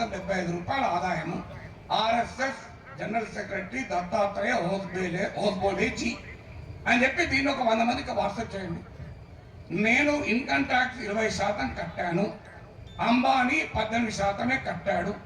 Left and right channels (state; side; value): identical; both; correlation 1.00